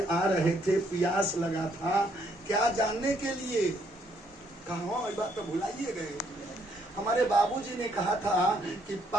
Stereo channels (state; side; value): normal; both; correlation 0.70